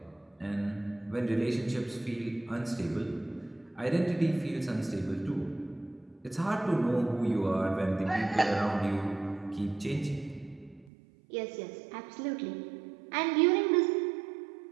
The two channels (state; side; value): drops out; left; at 10.9 s